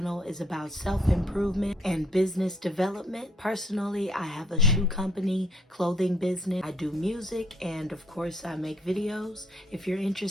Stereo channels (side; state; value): both; normal; correlation 0.66